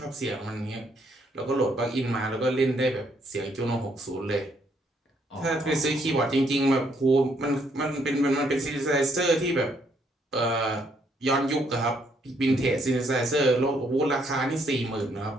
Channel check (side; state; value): both; normal; correlation 0.71